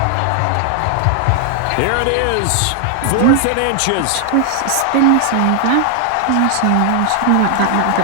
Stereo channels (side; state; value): both; different; correlation 0.00